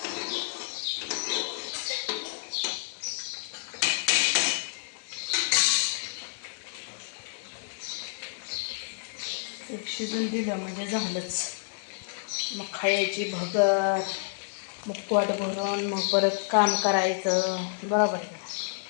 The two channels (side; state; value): right; silent; digital silence